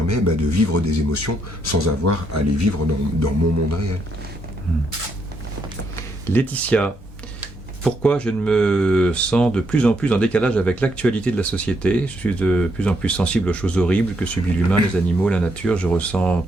de vivre des émotions sans avoir à les vivre dans mon monde réel. Laetitia, pourquoi je me sens de plus en plus en décalage avec l'actualité de la société? Je suis de plus en plus sensible aux choses horribles que subit l'humain, les animaux, la nature, je ressens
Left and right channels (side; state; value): both; normal; correlation 0.76